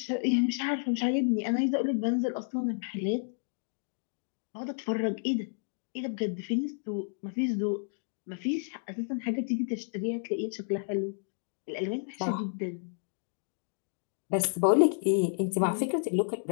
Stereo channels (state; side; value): silent; right; digital silence